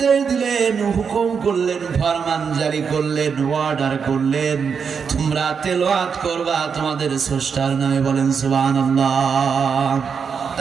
দিলেন, হুকুম করলেন, ফরমান জারি করলেন, অর্ডার করলেন, তোমরা তেলাওয়াত করবা তোমাদের স্রষ্টার নামে। বলেন সুবহানাল্লাহ।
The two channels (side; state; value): left; quieter; 6.2 dB